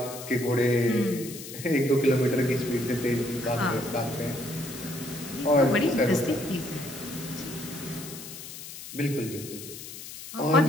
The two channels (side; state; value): left; noise; hiss, 12 dB below the sound